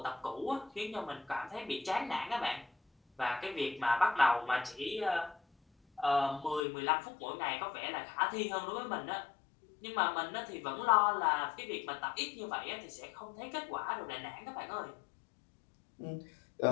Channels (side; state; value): right; drops out; at 6.6 s